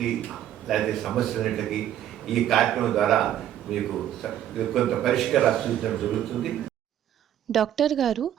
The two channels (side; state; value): left; quieter; 11.2 dB